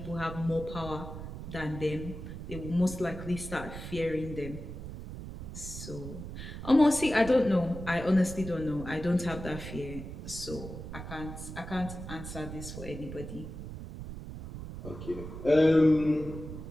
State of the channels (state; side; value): noise; right; rumble, 9 dB below the sound